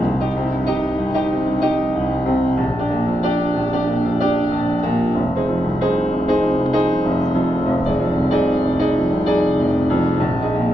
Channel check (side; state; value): right; noise; hum, 29 dB below the sound